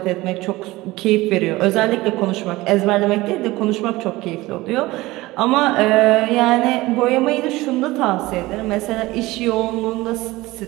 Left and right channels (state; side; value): quieter; left; 19.5 dB